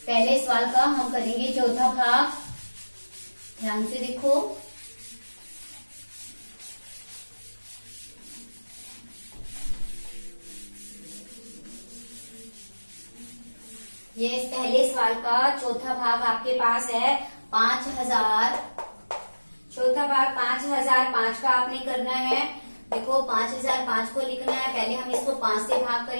पहले सवाल का हम करेंगे चौथा भाग। ध्यान से देखो, ये इस पहले सवाल का चौथा भाग आपके पास है 5000। चौथा भाग 5005 का आपने करना है। देखो 5005 को लिखना है। पहले हम इसको 5 से भाग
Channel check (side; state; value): both; inverted; correlation -1.00